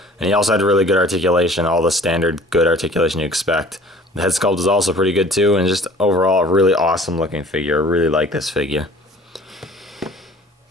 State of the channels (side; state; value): both; normal; correlation 0.49